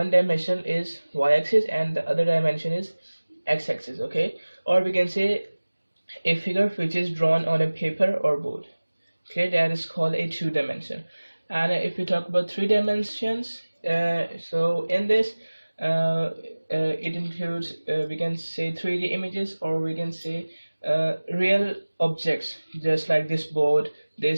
dimension is y-axis and the other dimension is x-axis. Okay, or we can say a figure which is drawn on a paper or board. Okay, that is called a two-dimension. And if we talk about three dimensions, so in this it includes we can say 3D images, or we can say real objects just like this board,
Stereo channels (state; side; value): inverted; both; correlation -1.00